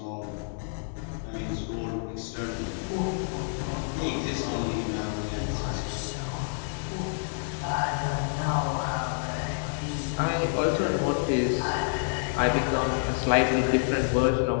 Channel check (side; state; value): right; silent; digital silence